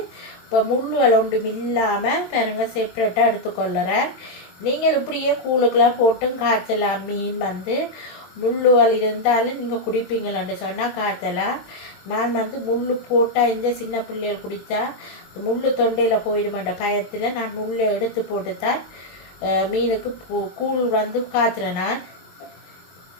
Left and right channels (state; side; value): late; right; 22 ms